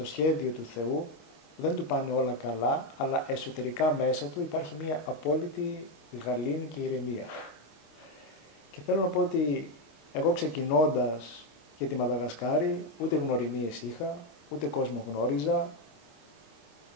σχέδιο του Θεού, δεν του πάνε όλα καλά, αλλά εσωτερικά μέσα του υπάρχει μια απόλυτη γαλήνη και ηρεμία. Και θέλω να πω ότι εγώ ξεκινώντας για τη Μαδαγασκάρη, ούτε γνωριμίες είχα, ούτε κόσμο γνώριζα.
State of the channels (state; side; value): late; right; 26 ms